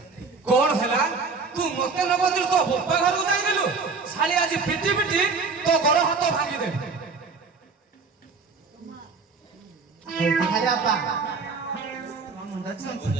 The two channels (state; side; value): quieter; left; 4.6 dB